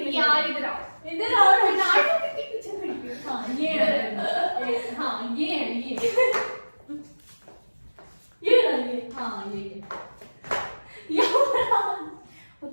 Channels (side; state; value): both; inverted; correlation -1.00